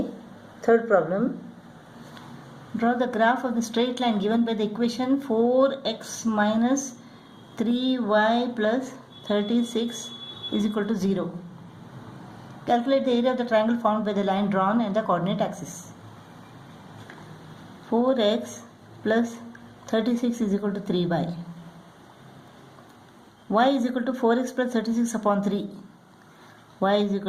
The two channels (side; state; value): both; identical; correlation 1.00